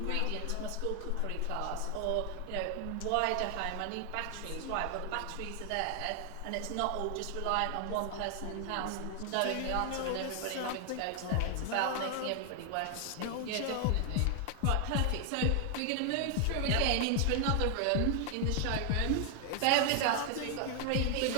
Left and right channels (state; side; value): different; both; correlation 0.00